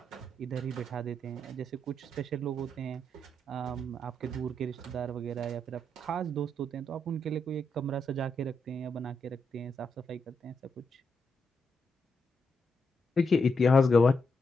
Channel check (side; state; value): both; normal; correlation 0.81